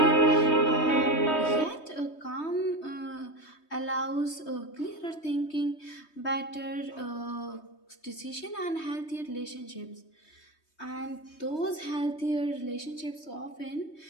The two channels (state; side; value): late; right; 3.2 ms